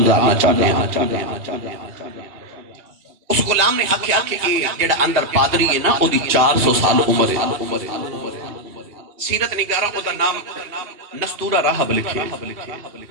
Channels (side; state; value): left; late; 2.8 ms